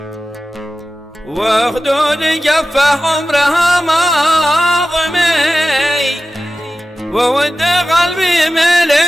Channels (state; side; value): normal; both; correlation 0.94